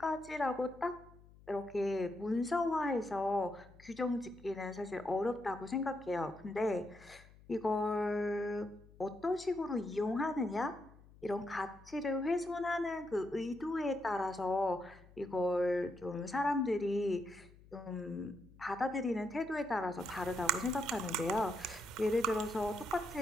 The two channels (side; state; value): left; noise; hum, 23 dB below the sound